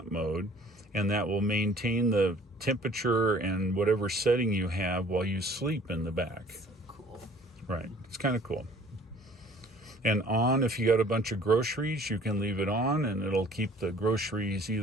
mode, and that will maintain the temperature and whatever setting you have while you sleep in the back. So cool. Right. It's kind of cool. And on, if you got a bunch of groceries, you can leave it on, and it'll keep the groceries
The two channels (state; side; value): normal; both; correlation 0.53